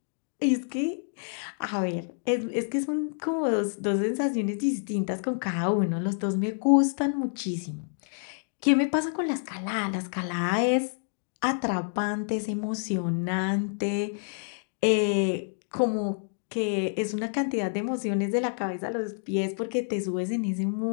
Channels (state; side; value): silent; right; digital silence